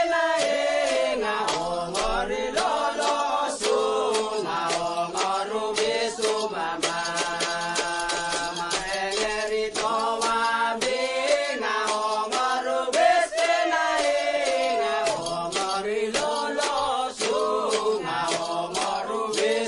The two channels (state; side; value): identical; both; correlation 1.00